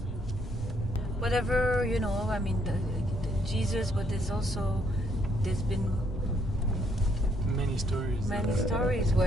Whatever, the Jesus, but there's been many stories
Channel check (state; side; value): normal; both; correlation 0.70